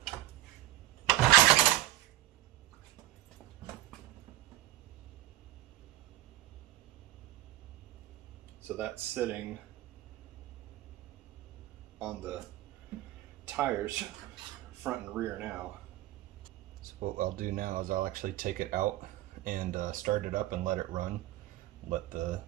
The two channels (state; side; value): quieter; left; 15.3 dB